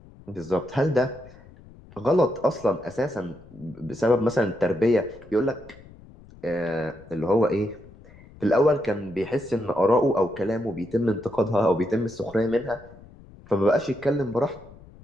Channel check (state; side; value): noise; left; rumble, 22 dB below the sound